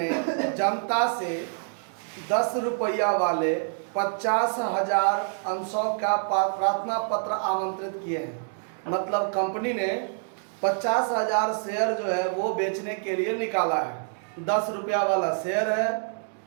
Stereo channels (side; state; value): left; silent; digital silence